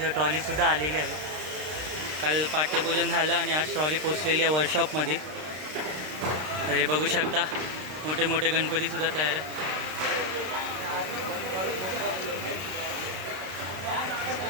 ट्रॉलीसुद्धा आलेली आहे. काल पाठ्यपूजन झालं आणि आज ट्रॉली पोचलेली आहे वर्कशॉपमध्ये. हे बघू शकता, मोठे मोठे गणपतीसुद्धा तयार आहे.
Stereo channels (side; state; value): left; late; 33 ms